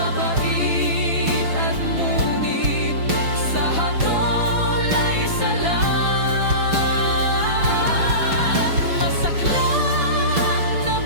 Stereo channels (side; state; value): left; late; 6.0 ms